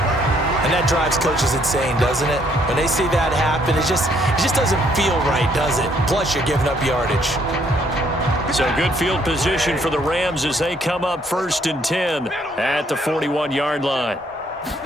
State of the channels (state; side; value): normal; both; correlation 0.67